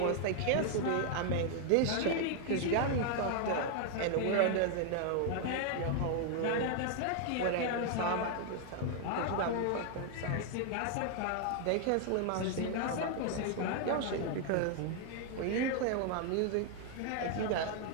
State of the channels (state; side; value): different; both; correlation 0.00